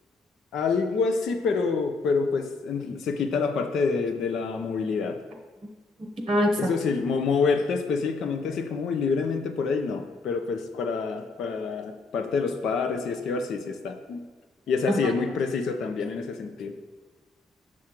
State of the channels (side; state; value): right; quieter; 4.0 dB